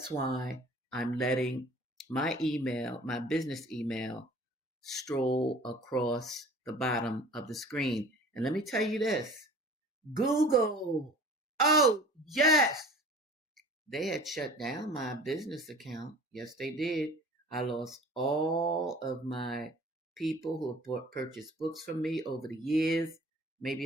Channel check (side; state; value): both; normal; correlation 0.45